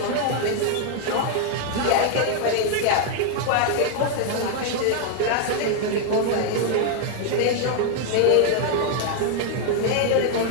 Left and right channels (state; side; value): different; both; correlation 0.00